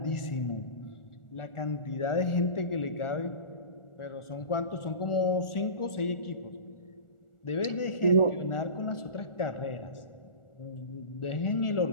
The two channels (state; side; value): late; right; 1.4 ms